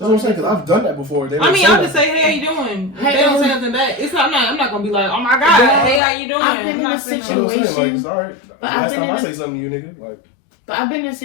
I'm respond? saying, because I've done that before. They I don't mean, say I'll that. just say, hey, how you doing? If Hey, they don't say um, nothing back, I'm not gonna be like, oh my god, hey, how you doing? I've been I'm in not a saying You know what I'm saying? Like, it's all right. I've Last been time in I a- say something to you, nigga, like, But I've been in a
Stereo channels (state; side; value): drops out; right; at 6.0 s